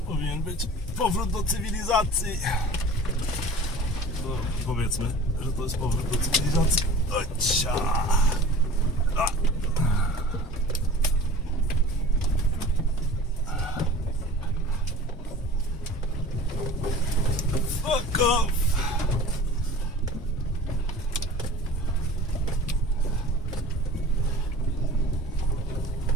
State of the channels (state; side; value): normal; both; correlation 0.43